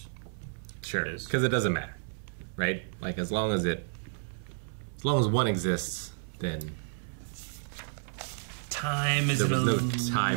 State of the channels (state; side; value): silent; left; 57 dB below the other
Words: Sure, because it doesn't matter, right? Like as long as one exists, then time is there was an no illusion.